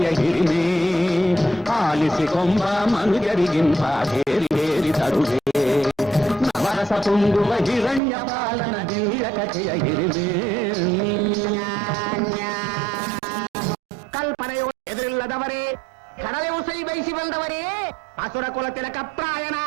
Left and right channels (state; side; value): drops out; left; at 8.0 s